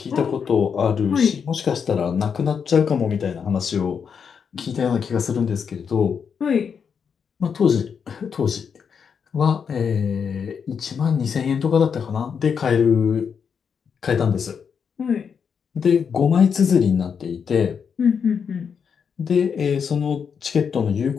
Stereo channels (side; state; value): right; quieter; 6.7 dB